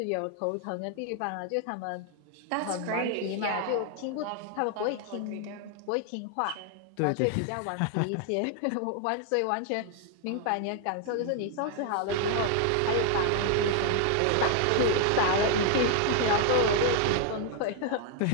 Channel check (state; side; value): different; both; correlation 0.00